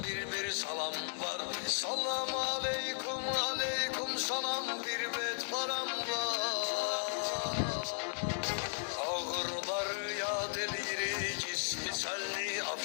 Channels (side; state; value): right; silent; 54 dB below the other